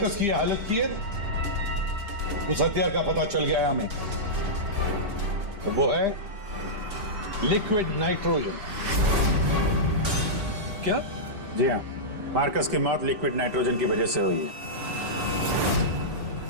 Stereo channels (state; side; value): late; left; 5.0 ms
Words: की हालत की है उस हथियार का पता चल गया है हमें, तो वो है लिक्विड नाइट्रोजन। क्या? जी हाँ, मार्कस की मौत लिक्विड नाइट्रोजन की वजह से हुई है,